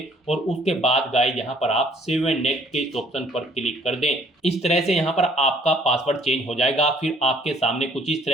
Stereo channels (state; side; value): normal; both; correlation 0.60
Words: और उसके बाद गाइस यहाँ पर आप सेव एंड नेक्स्ट के इस ऑप्शन पर क्लिक कर दें। इस तरह से यहाँ पर आपका पासवर्ड चेंज हो जाएगा। फिर आपके सामने कुछ इस